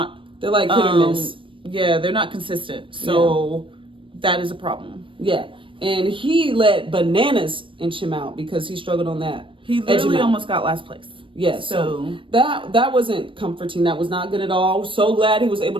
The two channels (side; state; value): left; late; 0.25 ms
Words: They're like hit or miss. Yeah, they're not consistent. So that is a problem. Yeah, and he let bananas inch him out because he struggled on that. He literally almost got last place. Yeah, so that wasn't comforting. That was not good at all. So glad he was able